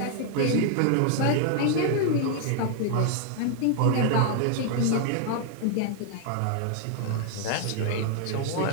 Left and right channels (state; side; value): different; both; correlation 0.00